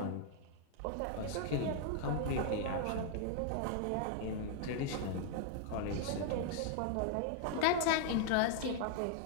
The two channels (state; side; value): different; both; correlation -0.01